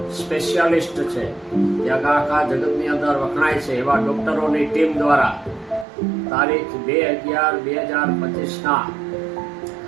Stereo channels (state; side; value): drops out; left; at 5.9 s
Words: સ્પેશિયાલિસ્ટ છે જે આખા જગતની અંદર વખણાય છે એવા ડૉક્ટરોની ટીમ દ્વારા તારીખ 2/11/2025ના